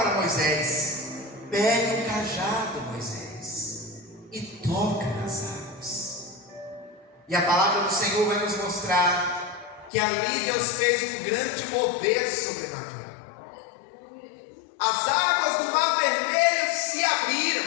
Moisés: pegue o cajado, Moisés, e toca nas águas. E a palavra do Senhor vai nos mostrar que ali Deus fez um grande mover sobrenatural. As águas do Mar Vermelho se abriram.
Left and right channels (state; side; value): drops out; right; at 9.9 s